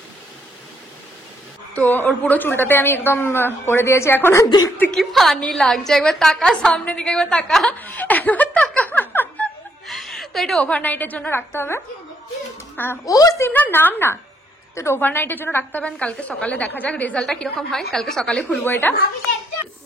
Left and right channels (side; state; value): both; normal; correlation 0.73